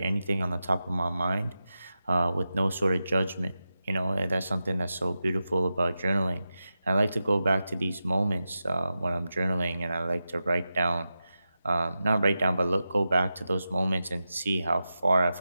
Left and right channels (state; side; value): inverted; both; correlation -0.91